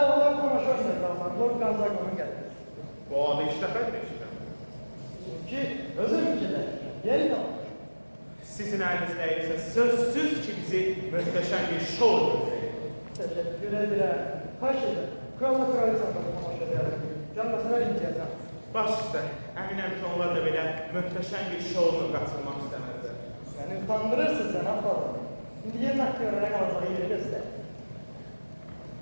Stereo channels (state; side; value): inverted; both; correlation -1.00